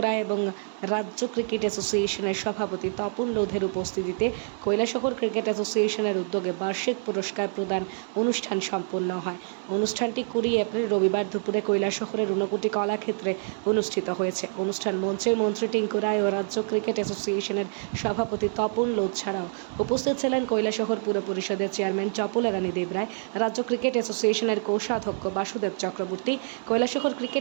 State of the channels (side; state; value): left; silent; 60 dB below the other